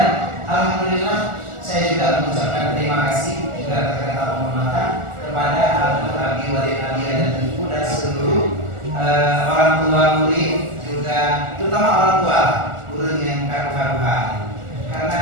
alhamdulillah saya juga mengucapkan terima kasih juga kata-kata penghormatan kepada Abi Walid Abia dan Ibu dan seluruh orang tua murid, juga terutama orang tua guru yang karuha-karuhan.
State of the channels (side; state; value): left; late; 1.4 ms